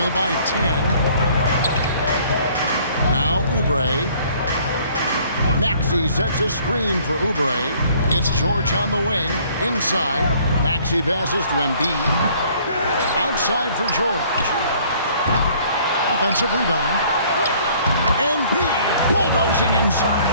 by 10. Now Oubre. Maxey sets a screen for Oubre. It's George on the wing. Inside. Maxey passes to Embiid. Outside for George. Offensive rebound. Embiid bulldozing inside.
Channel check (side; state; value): both; inverted; correlation -0.58